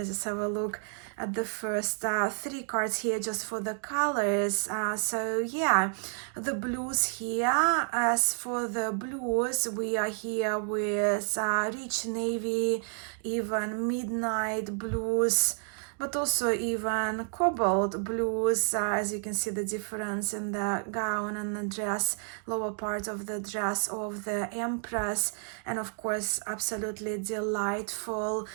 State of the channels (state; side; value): silent; left; 58 dB below the other